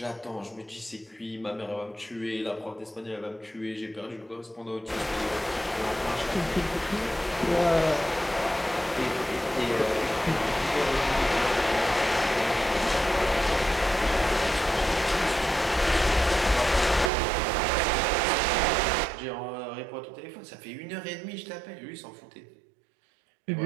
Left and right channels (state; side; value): drops out; left; at 17.1 s